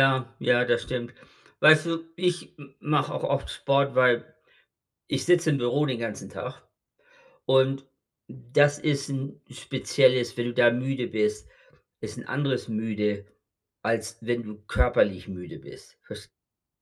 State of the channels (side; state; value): both; identical; correlation 1.00